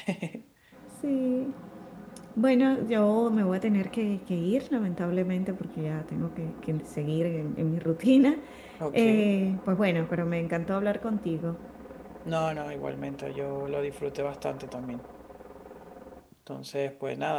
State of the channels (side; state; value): both; identical; correlation 1.00